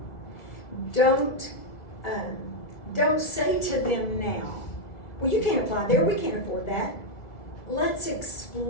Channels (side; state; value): right; late; 1.9 ms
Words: Don't say to them now, well, you can't apply there, we can't afford that. Let's